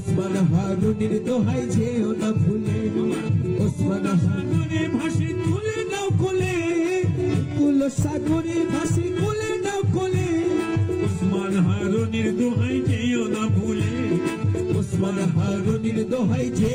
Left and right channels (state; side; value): identical; both; correlation 1.00